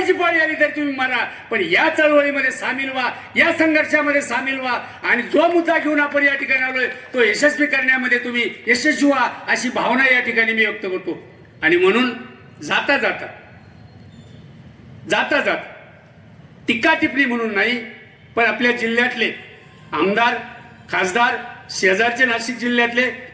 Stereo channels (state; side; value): identical; both; correlation 1.00